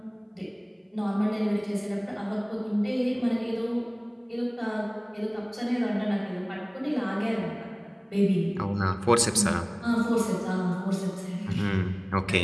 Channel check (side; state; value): both; identical; correlation 1.00